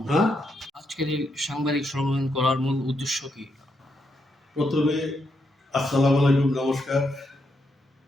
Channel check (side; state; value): both; normal; correlation 0.80